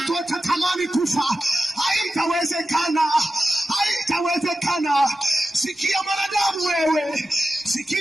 watatamani kufa. Haitawezekana, haitawezekana. Sikia mwanadamu wewe,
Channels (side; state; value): both; normal; correlation 0.93